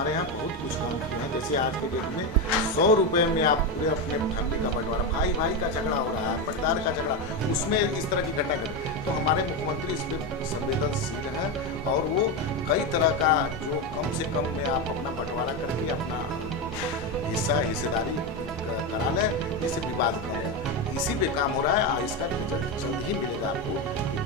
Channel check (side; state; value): both; normal; correlation 0.12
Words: यहाँ बहुत कुछ काम किए हैं। जैसे आज के डेट में 100 रुपये में आप पूरे अपने फैमिली का बंटवारा, भाई भाई का झगड़ा हो रहा है, पटदार का झगड़ा, उसमें इस तरह की घटना घटे, तो हमारे मुख्यमंत्री इस पर संवेदनशील हैं और वो कई तरह का जो कम से कम में आप अपना बंटवारा करके अपना हिस्सेदारी करा लें, जिससे विवाद कम हो। इसी पे काम हो रहा है और इसका रिजल्ट जल्द ही मिलेगा आपको कि